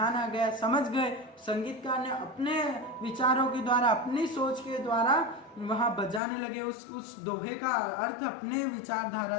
आ गया, समझ गए। संगीतकार ने अपने विचारों के द्वारा, अपनी सोच के द्वारा वहां बजाने लगे, उस दोहे का अर्थ अपने विचारधारा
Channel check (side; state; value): right; drops out; at 6.2 s